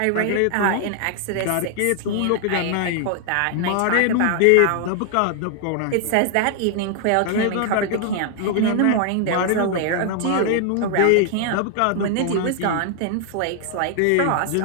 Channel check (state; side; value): different; both; correlation 0.00